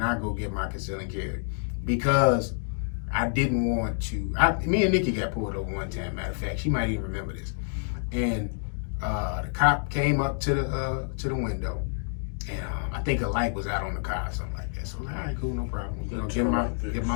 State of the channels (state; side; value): silent; right; 59 dB below the other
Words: go get my conceal and carry because I didn't want to. Me and Nikki got pulled over one time, matter of fact. She might even remember this. And the cop came up to the window, and I think a light was out on the car or something like that. So I was like, all right, cool, no problem. Get